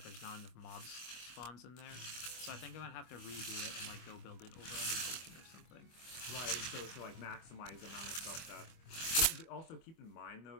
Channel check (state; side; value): late; right; 25 ms